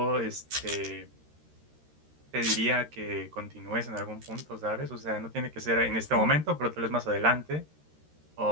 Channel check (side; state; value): left; late; 13 ms